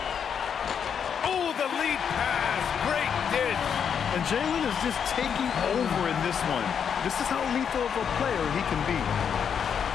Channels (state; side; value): quieter; right; 7.5 dB